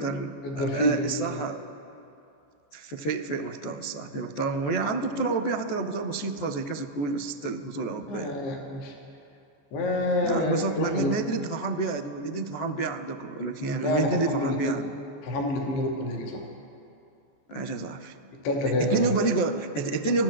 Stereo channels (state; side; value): late; right; 14 ms